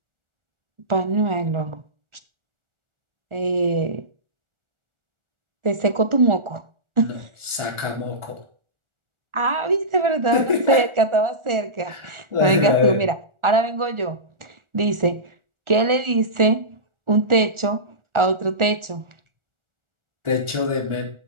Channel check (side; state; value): left; late; 1.4 ms